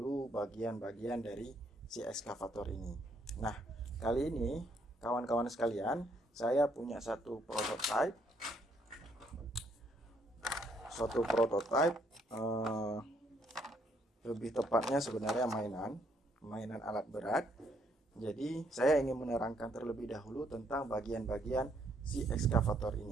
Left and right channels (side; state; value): both; normal; correlation 0.70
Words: bagian-bagian dari si ekskavator ini. Nah, kali ini kawan-kawan sekalian, saya punya suatu prototipe, lebih tepatnya sebenarnya mainan alat berat. Jadi saya ingin menerangkan terlebih dahulu tentang bagian-bagian si ekskavator